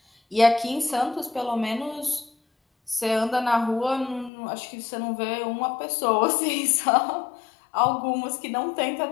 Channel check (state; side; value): drops out; right; at 4.3 s